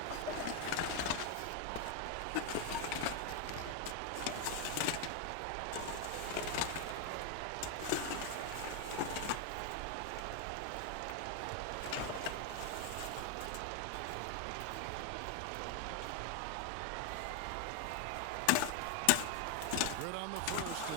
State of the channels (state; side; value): different; both; correlation 0.01